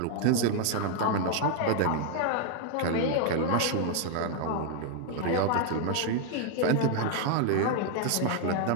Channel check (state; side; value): different; both; correlation 0.00